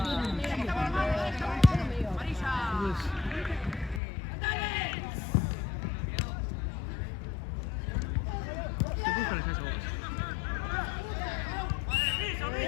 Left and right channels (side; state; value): right; drops out; at 4.0 s